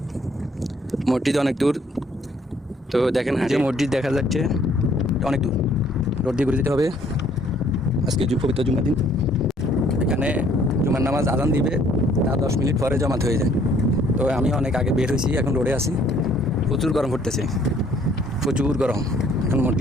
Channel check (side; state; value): both; normal; correlation 0.62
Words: মসজিদ অনেক দূর, তো দেখেন যে মসজিদ দেখা যাচ্ছে অনেক দূর, রোড দিয়ে ঘুরে যেতে হবে। আজকে পবিত্র জুমার দিন। এখানে জুমার নামাজ আজান দিবে, তা 10 মিনিট পরে জমাত হয়ে যায়। তো আমি অনেক আগে বের হয়েছি, এখন রোডে আছি। প্রচুর গরম পড়তেছে, প্রচুর গরম। এখন